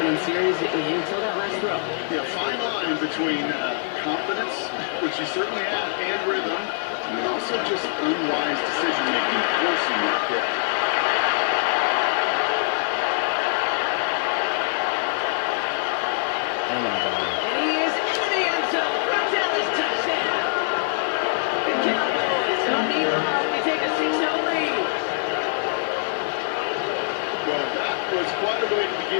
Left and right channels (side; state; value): right; silent; digital silence